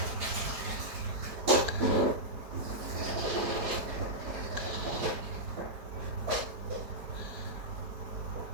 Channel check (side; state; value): left; late; 4.7 ms